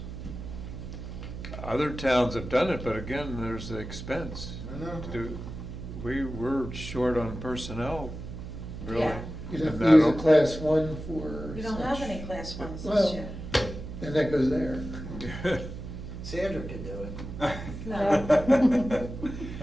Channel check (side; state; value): right; noise; hum, 9 dB below the sound